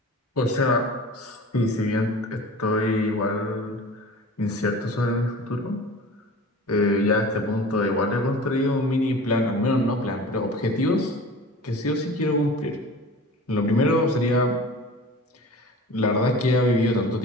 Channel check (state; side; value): normal; both; correlation 0.39